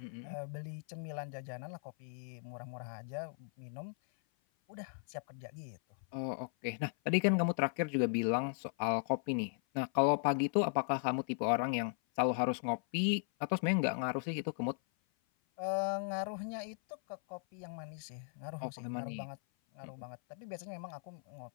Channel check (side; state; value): right; silent; 53 dB below the other